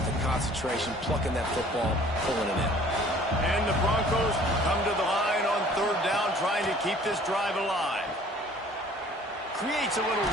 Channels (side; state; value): both; normal; correlation 0.52